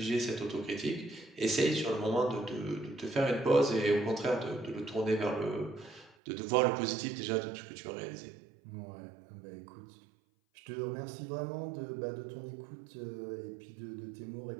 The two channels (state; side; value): drops out; left; at 6.2 s